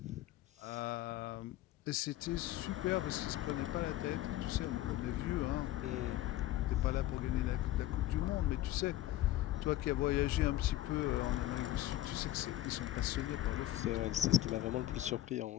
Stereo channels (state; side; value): quieter; right; 14.8 dB